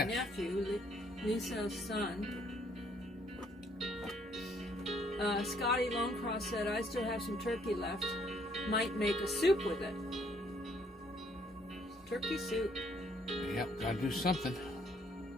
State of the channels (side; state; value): both; normal; correlation 0.66